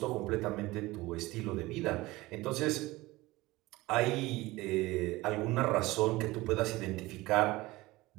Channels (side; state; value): left; quieter; 19.8 dB